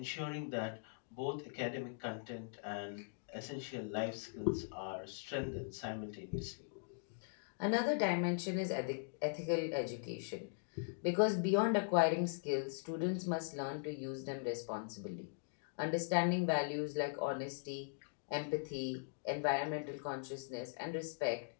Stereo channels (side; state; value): right; silent; digital silence